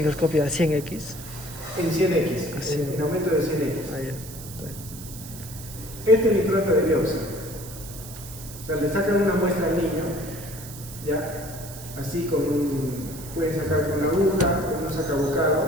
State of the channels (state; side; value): noise; right; hiss, 14 dB below the sound